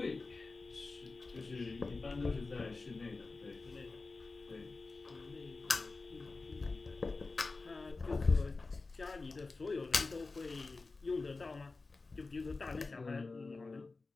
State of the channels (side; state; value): right; quieter; 3.7 dB